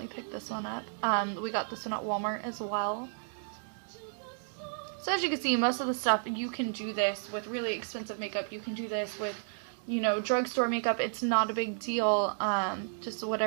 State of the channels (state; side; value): silent; left; digital silence